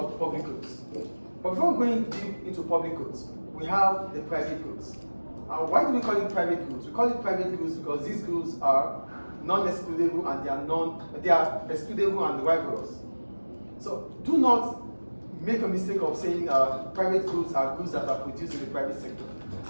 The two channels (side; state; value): both; inverted; correlation -1.00